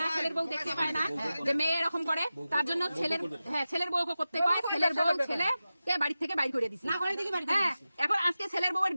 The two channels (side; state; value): both; inverted; correlation -0.94